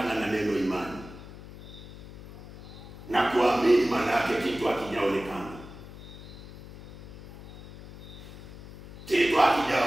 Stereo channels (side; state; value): left; noise; hum, 15 dB below the sound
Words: kumwamini maana yake kitu hakijaonekana. Kitu